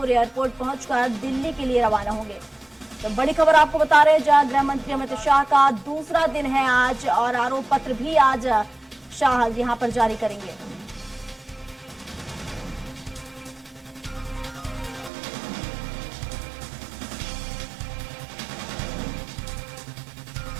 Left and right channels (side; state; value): left; drops out; at 15.1 s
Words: एयरपोर्ट पहुंचकर दिल्ली के लिए रवाना होंगे। तो बड़ी खबर आपको बता रहे हैं, जहां गृह मंत्री अमित शाह का दूसरा दिन है आज और आरोप पत्र भी आज शाह यहां पर जारी करेंगे।